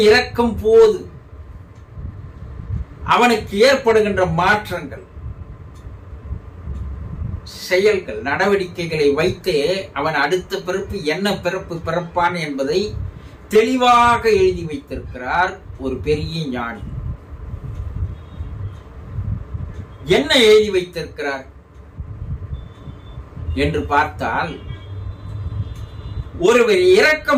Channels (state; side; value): identical; both; correlation 1.00